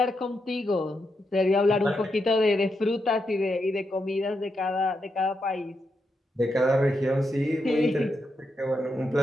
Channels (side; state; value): both; normal; correlation 0.84